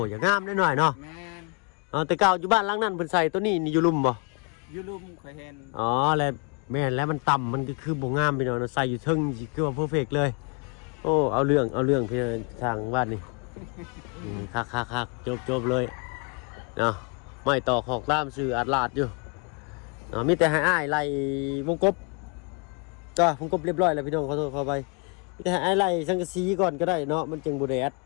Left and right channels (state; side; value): quieter; right; 33.5 dB